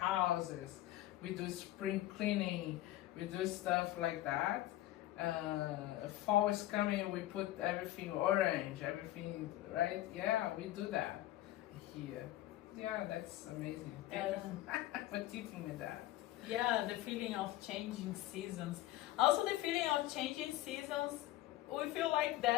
We do spring cleaning. We do stuff like that. Fall is coming, we put everything orange, everything, right? Yeah, we do that here. Yeah, that's amazing. Thank you for teaching me that. Yeah, the feeling of changing seasons. Also the feeling of changing seasons, we feel like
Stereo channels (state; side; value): quieter; right; 15.3 dB